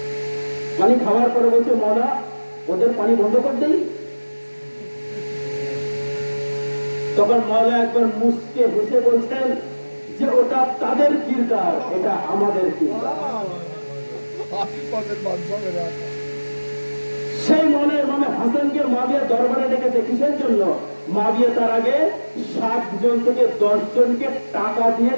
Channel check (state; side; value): inverted; both; correlation -1.00